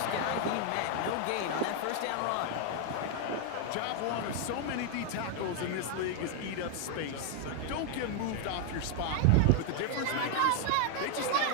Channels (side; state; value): both; different; correlation 0.00